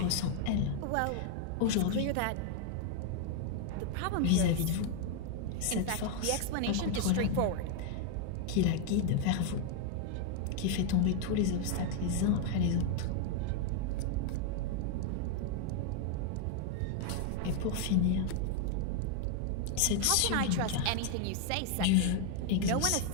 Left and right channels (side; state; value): both; different; correlation 0.00